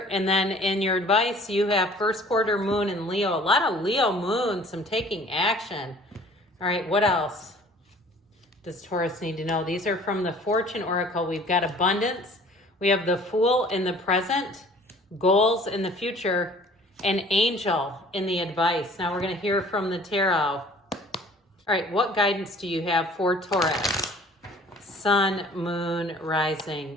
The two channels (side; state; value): both; normal; correlation 0.51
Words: and then in your advice, you have first quarter moon in Leo. A lot of Leo moon, some taking action. All right, what else does Taurus need to know? These are from the Fortune Oracle. We've got abundance. We have the Fool in the present, goals in the future, and angel in the advice. Now we're going to hear from the tarot. All right, what guidance do you have for Taurus? Sun, Moon,